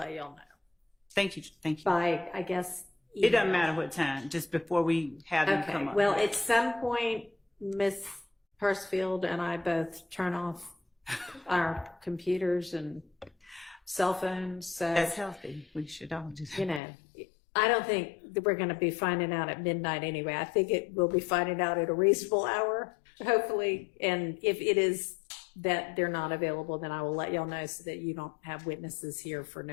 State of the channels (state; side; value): drops out; right; at 16.8 s